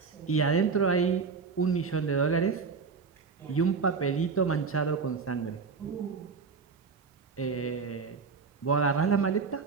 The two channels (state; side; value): quieter; left; 5.2 dB